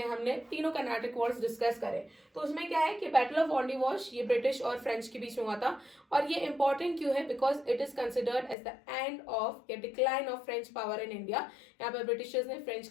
हमने तीनों कर्नाटक वॉर्स डिस्कस करे। तो उसमें क्या है कि बैटल ऑफ वॉन्डीवॉश ये ब्रिटिश और फ्रेंच के बीच में हुआ था। और ये इंपॉर्टेंट क्यों है? Because it is considered as the end of या decline of French power in India. यहाँ पर ब्रिटिशर्स ने फ्रेंच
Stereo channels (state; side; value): drops out; right; at 8.6 s